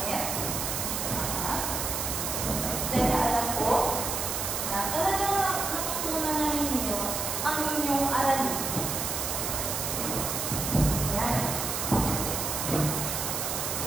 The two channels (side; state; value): right; noise; hiss, 2 dB below the sound